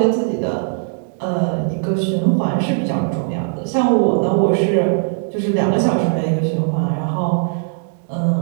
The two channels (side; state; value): left; silent; 67 dB below the other